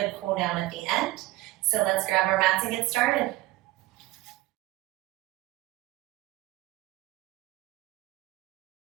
cool down at the end. So let's grab our mats and get started.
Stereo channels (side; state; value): left; quieter; 18.0 dB